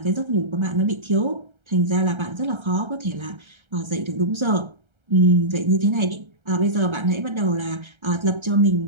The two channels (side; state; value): left; late; 1.3 ms